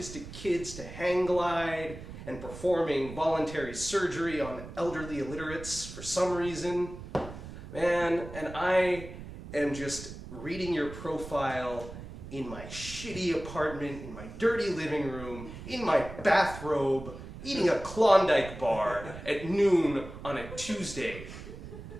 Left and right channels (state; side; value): noise; right; rumble, 12 dB below the sound